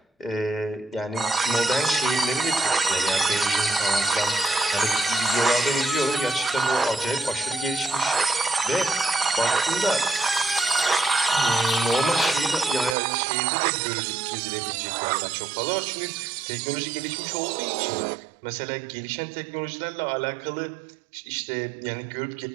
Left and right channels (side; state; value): left; drops out; at 13.0 s